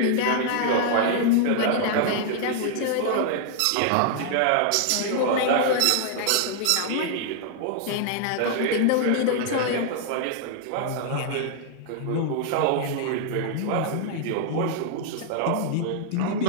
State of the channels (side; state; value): both; different; correlation -0.01